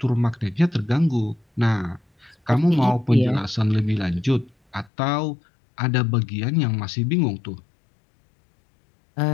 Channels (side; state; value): right; drops out; at 4.9 s